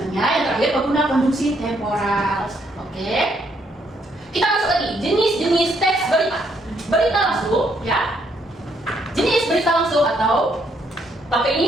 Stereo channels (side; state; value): both; normal; correlation 0.72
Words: yang terakhir pengguna konjungsi temporal. Oke. Kita masuk lagi jenis-jenis teks berita. Berita langsung, ya. Jenis berita langsung atau pakai